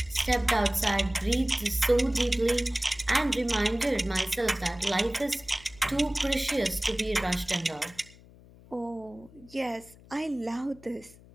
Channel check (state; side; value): noise; left; hum, 23 dB below the sound